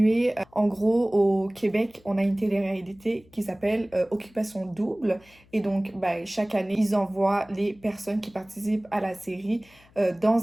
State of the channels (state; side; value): noise; left; hum, 29 dB below the sound